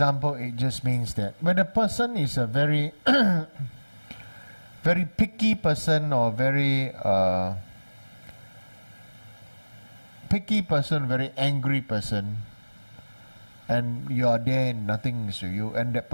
It just means that when a person is a very very picky person or very very angry person, and you are there and nothing is to you, and that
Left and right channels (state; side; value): inverted; both; correlation -1.00